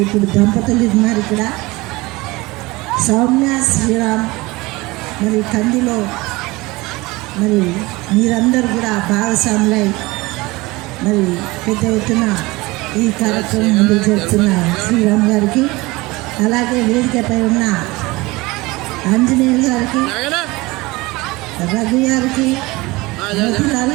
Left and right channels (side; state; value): left; quieter; 22.2 dB